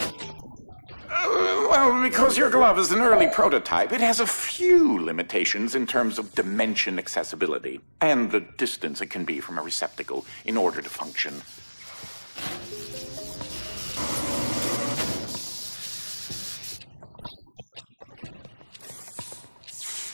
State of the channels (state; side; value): inverted; both; correlation -1.00